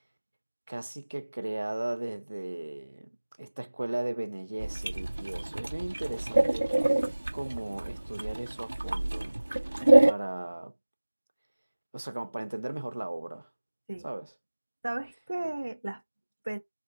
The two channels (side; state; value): both; inverted; correlation -1.00